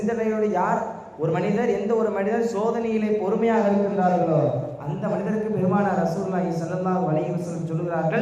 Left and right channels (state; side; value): identical; both; correlation 1.00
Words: யார் ஒரு மனிதர் எந்த ஒரு மனிதர் சோதனையிலே பொறுமையாக இருக்கின்றார்களோ அந்த மனிதருக்கு பெருமானார் ரசூலுல்லாஹி ஸல்லல்லாஹு அலைஹி வஸல்லம்